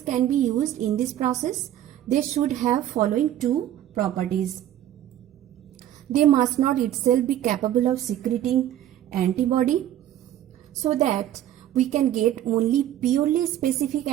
can be used in this process. They should have following 2 properties. They must not itself be capable of secreting antibody, so that we can get only purely specific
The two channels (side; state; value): left; quieter; 12.1 dB